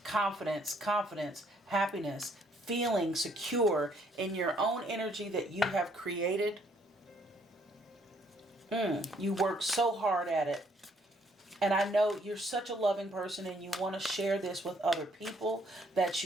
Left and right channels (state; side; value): normal; both; correlation 0.67